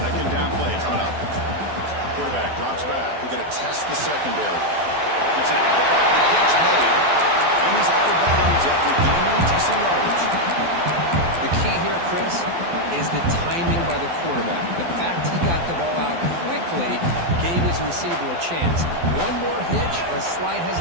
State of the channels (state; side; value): late; left; 12 ms